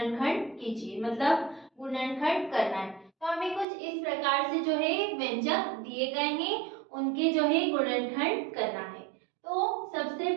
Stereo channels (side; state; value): left; drops out; at 3.7 s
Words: कीजिए, मतलब गुणनखंड करना है। तो हमें कुछ इस प्रकार से जो है व्यंजक दिए गए हैं, उनके जो है गुणनखंड करना है। तो सबसे